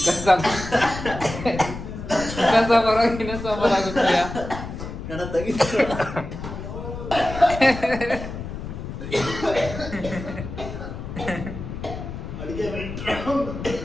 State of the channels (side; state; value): left; noise; rumble, 8 dB below the sound